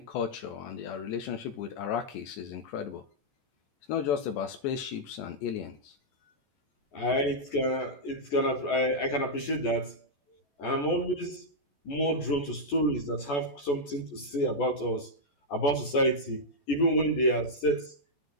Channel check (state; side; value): late; right; 14 ms